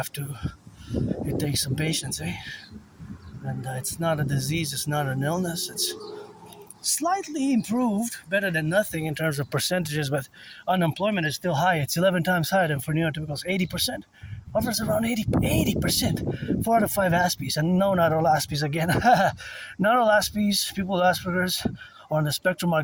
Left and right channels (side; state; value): both; identical; correlation 1.00